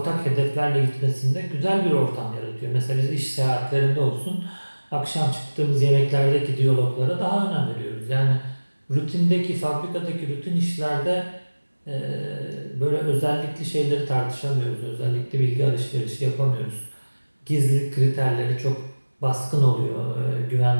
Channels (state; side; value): inverted; both; correlation -1.00